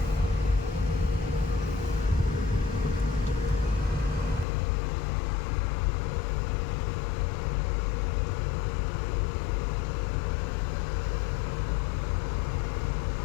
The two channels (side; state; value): right; drops out; at 4.5 s